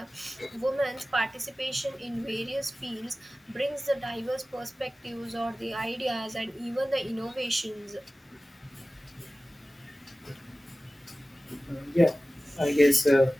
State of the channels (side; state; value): both; normal; correlation 0.97